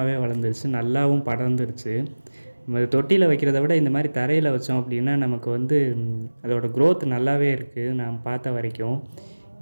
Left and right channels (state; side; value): inverted; both; correlation -1.00